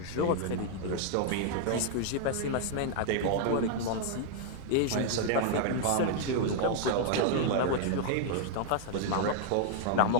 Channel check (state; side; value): different; both; correlation -0.01